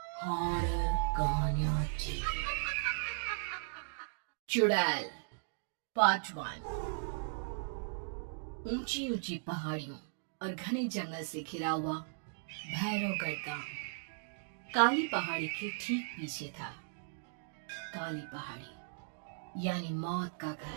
हॉरर कहानियां टीवी चुड़ैल पार्ट 1। ऊंची ऊंची पहाड़ियों और घने जंगल से घिरा हुआ भैरवगढ़ गांव काली पहाड़ी के ठीक पीछे था। काली पहाड़ी यानी मौत का घर।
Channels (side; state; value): left; silent; digital silence